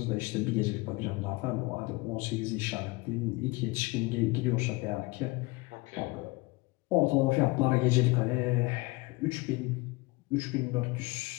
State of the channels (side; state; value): right; quieter; 23.9 dB